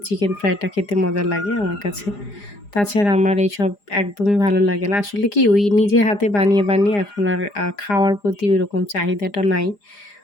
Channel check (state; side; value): late; right; 4.9 ms